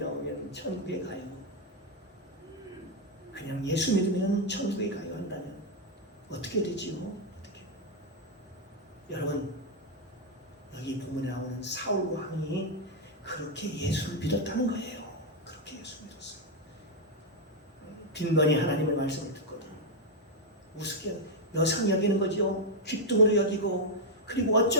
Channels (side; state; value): both; normal; correlation -0.01